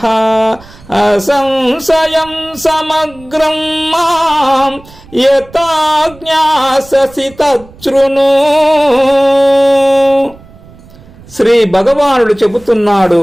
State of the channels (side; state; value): right; noise; rumble, 23 dB below the sound